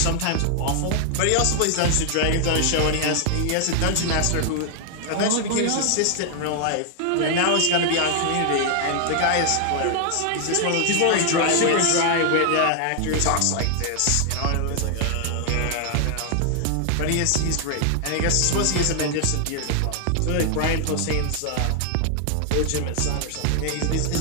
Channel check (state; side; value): different; both; correlation 0.00